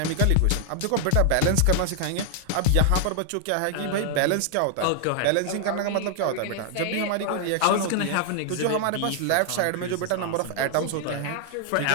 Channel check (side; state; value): both; different; correlation 0.00